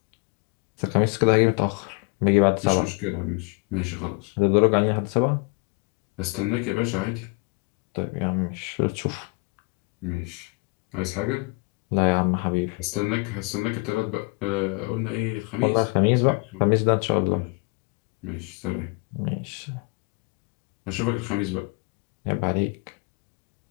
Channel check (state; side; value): quieter; right; 29.3 dB